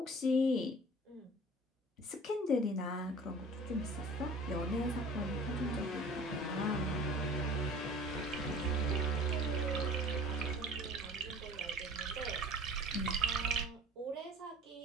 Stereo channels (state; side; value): normal; both; correlation 0.44